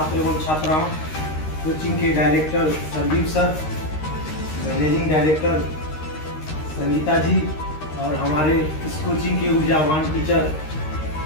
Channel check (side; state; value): right; late; 13 ms